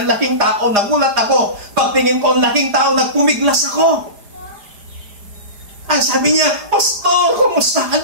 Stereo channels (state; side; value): late; left; 4.9 ms